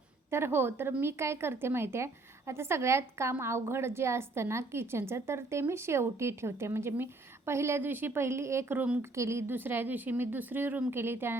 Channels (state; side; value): quieter; left; 3.1 dB